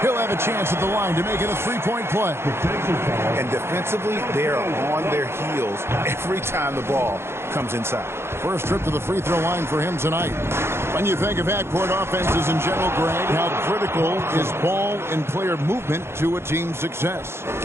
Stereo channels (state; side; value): late; left; 0.12 ms